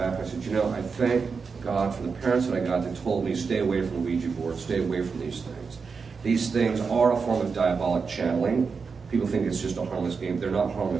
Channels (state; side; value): quieter; left; 5.2 dB